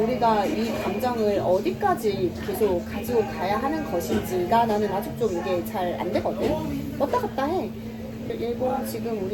이 감정을 어디까지 계속 가지고 가야 하는 것인지가 나는 아직 좀 이게 잘 안 되거든. 왔다 갔다 해. 일본 지금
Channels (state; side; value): identical; both; correlation 1.00